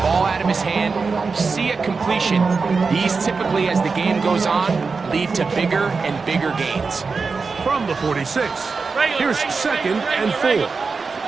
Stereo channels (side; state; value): left; quieter; 4.6 dB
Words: ball out of his hand, see a completion. These typically, as the game goes on, lead to bigger and bigger gains. From the 46, here's second and 4.